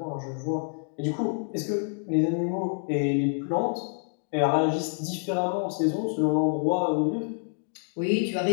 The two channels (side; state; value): right; silent; 56 dB below the other